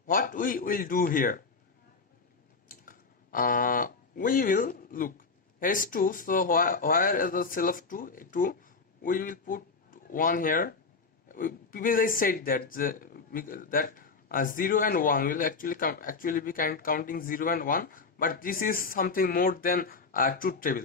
what we will do here, we will look, here is 2, so where is the cell of 2, we will put 1 here, previously said that that 0 and 1 will actually be counting 0 and 1, but this is something more than truth table.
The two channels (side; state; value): right; quieter; 4.5 dB